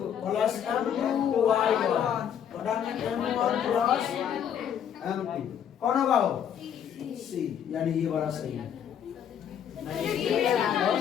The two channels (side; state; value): right; quieter; 8.9 dB